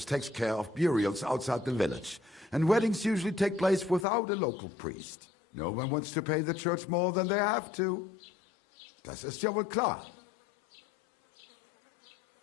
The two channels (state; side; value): drops out; right; at 4.0 s